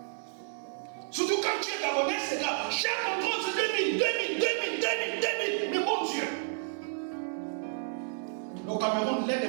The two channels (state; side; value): silent; left; digital silence